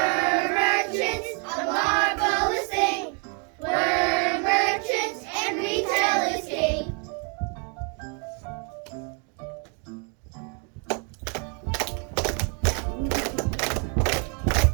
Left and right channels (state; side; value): quieter; left; 37.8 dB